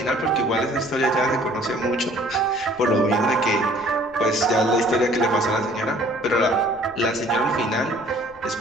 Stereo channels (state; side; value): noise; left; rumble, 28 dB below the sound